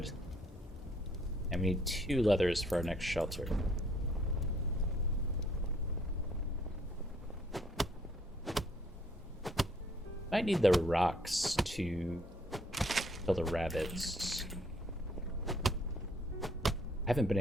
And we need 2 leathers for our next shelter. Might need the rocks to kill the rabbits. I haven't been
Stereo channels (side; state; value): both; normal; correlation 0.65